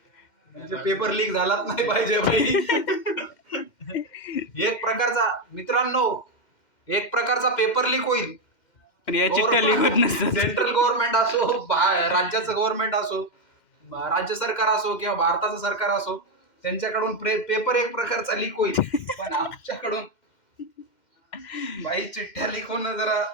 म्हणजे पेपर लीक झालाच नाही पाहिजे भाई. एक प्रकारचा मित्रांनो एक प्रकारचा पेपर लीक होईल. पण या चिठ्ठ्या लिखत नसतात. सेंट्रल गव्हर्नमेंट असो राज्याचं गव्हर्नमेंट असो राज्य सरकार असो किंवा भारताचं सरकार असो त्यांच्याकडून पेपर एक प्रकारचा लीक होईल. पण आमच्याकडून बाई चिठ्ठ्या लीक होणं जरा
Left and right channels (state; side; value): late; right; 2.1 ms